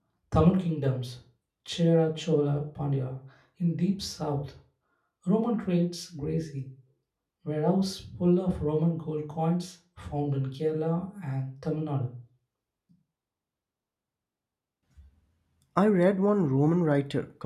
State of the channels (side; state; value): both; identical; correlation 1.00